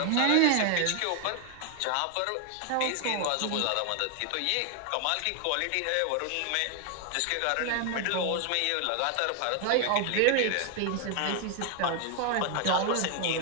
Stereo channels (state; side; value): different; both; correlation 0.00